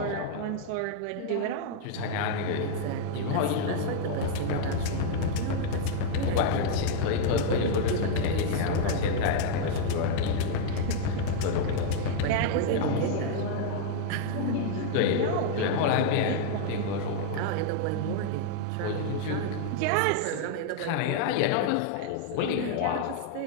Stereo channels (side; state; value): both; different; correlation 0.00